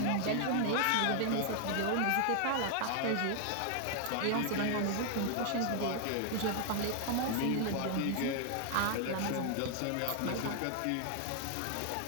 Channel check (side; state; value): both; different; correlation 0.00